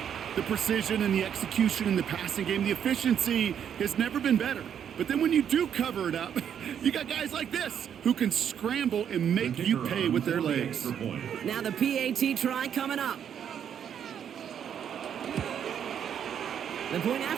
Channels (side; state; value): left; quieter; 8.7 dB